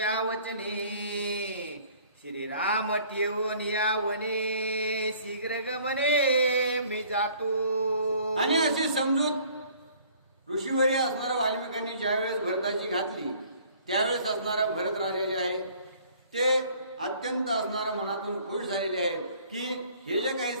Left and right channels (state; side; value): inverted; both; correlation -0.55